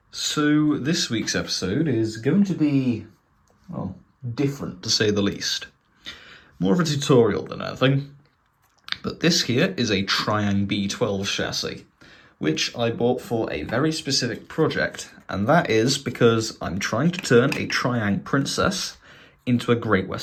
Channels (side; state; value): both; identical; correlation 1.00